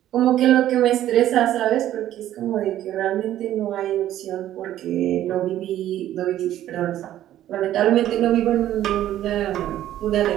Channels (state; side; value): quieter; left; 12.6 dB